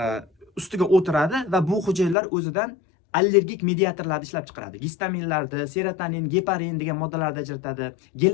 ustiga o'tiradi va bu hujayralar o'zidan allergik mediatorlarni ishlab chiqaradi. Gistaminlarni, serotonin, geparin degan moddalarni ajratadi.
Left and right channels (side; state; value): right; drops out; at 2.1 s